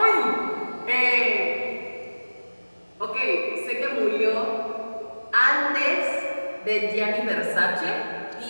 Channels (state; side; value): inverted; both; correlation -1.00